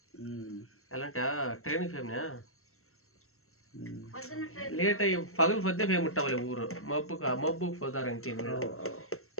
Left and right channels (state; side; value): late; right; 0.63 ms